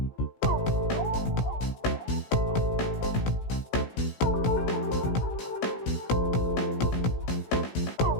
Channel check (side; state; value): right; late; 16 ms